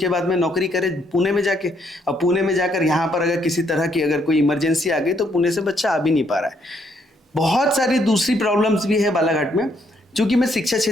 बाद में नौकरी करे पुणे में जाके, और पुणे में जाकर यहाँ पर अगर किसी तरह की अगर कोई इमरजेंसी आ गई तो पुणे से बच्चा आ भी नहीं पा रहा है। बहुत सारी दूसरी प्रॉब्लम्स भी है बालाघाट में। चूंकि मैं शिक्षा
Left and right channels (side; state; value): both; normal; correlation 0.72